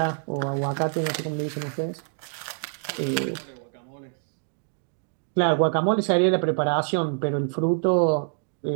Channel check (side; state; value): left; silent; digital silence